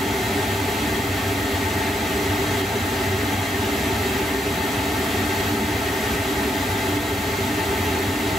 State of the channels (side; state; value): both; normal; correlation 0.78